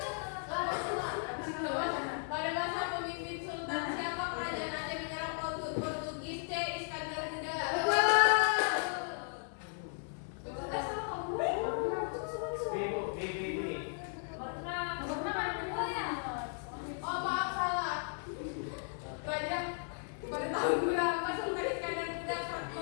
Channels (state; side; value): silent; right; 54 dB below the other